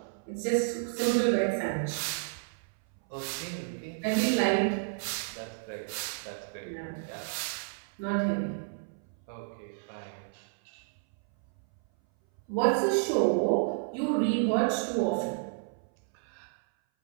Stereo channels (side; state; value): left; silent; 57 dB below the other